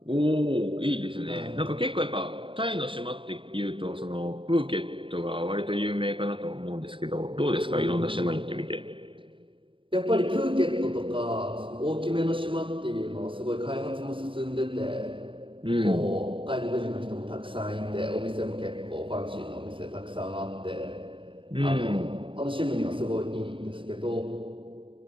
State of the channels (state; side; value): late; left; 0.25 ms